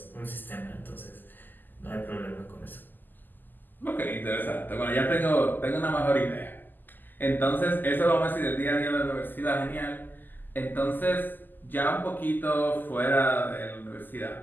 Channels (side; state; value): right; late; 0.088 ms